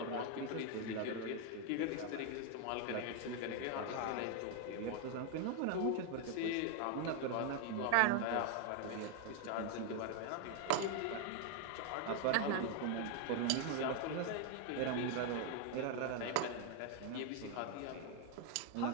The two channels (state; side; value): different; both; correlation 0.01